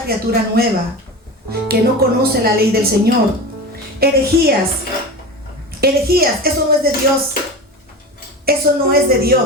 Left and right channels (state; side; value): normal; both; correlation 0.28